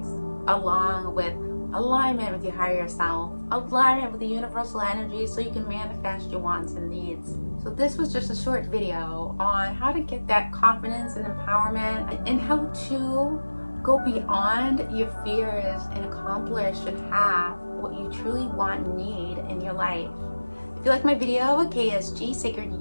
along with alignment with your higher self, alignment with the universal energy, so you can manifest your wants and needs. So this was just a short video on how to get that confidence and empowerment, and how to go beyond your fears and accomplish and have what you truly want and need in your life. If you like my video, KSG, Sacred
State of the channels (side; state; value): both; inverted; correlation -1.00